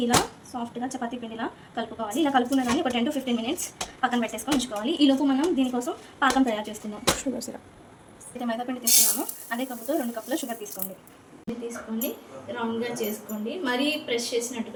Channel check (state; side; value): identical; both; correlation 1.00